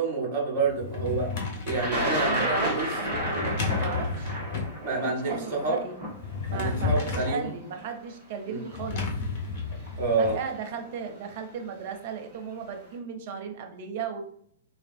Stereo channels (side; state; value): both; inverted; correlation -0.31